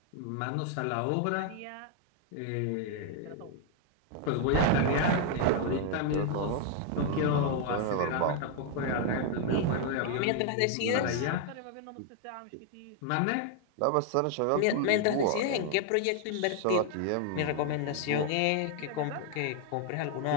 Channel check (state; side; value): different; both; correlation 0.00